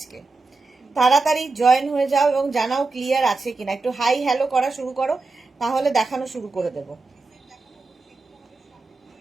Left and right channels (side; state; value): left; quieter; 3.7 dB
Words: তাড়াতাড়ি জয়েন হয়ে যাও এবং জানাও ক্লিয়ার আছে কিনা। একটু হাই হ্যালো করা শুরু করো, তাহলে দেখানো শুরু করে দেবো।